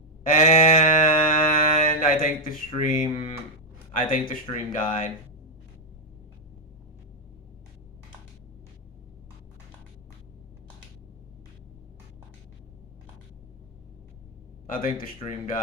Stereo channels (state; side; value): normal; both; correlation 0.01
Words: And I think the stream died. I think the stream